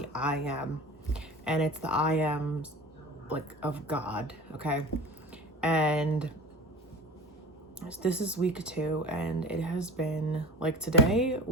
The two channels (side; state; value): both; normal; correlation 0.37